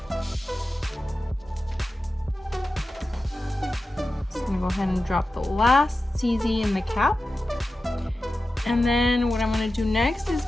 Just going to go ahead and drop the last CZ in the cap. And then what I'm going to do next is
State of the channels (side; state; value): both; normal; correlation 0.93